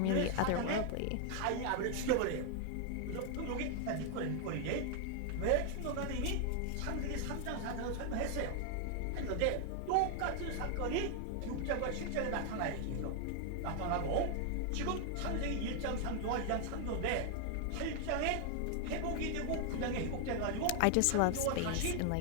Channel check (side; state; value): both; different; correlation 0.00